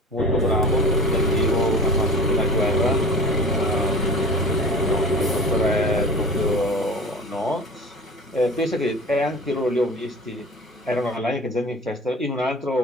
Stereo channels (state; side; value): normal; both; correlation 0.38